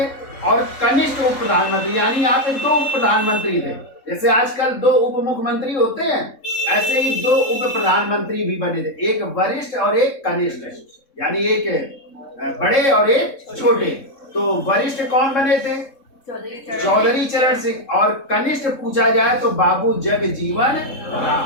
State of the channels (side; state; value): right; late; 3.7 ms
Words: और कनिष्ठ उप प्रधानमंत्री, यानी यहाँ पे दो उप प्रधानमंत्री थे। जैसे आजकल दो उप मुख्यमंत्री होते हैं, ऐसे ही दो उप प्रधानमंत्री भी बने थे, एक वरिष्ठ और एक कनिष्ठ, यानी एक बड़े और एक छोटे। तो वरिष्ठ कौन बने थे? चौधरी चरण सिंह। और कनिष्ठ पूछा जाए तो बाबू जगजीवन